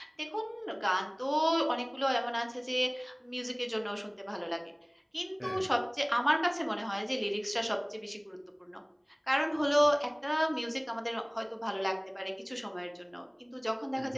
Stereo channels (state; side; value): identical; both; correlation 1.00